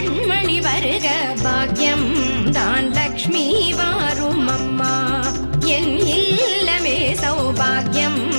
வருக. பாக்யம் தான் லக்ஷ்மி வாரும் அம்மா. என் இல்லமே சௌபாகியம்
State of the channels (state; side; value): inverted; both; correlation -1.00